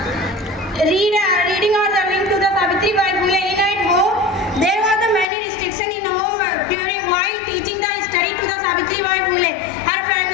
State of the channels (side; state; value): right; drops out; at 5.2 s